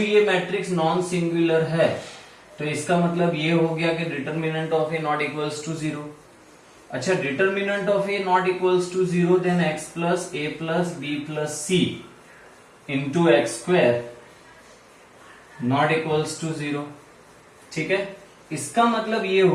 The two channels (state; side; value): identical; both; correlation 1.00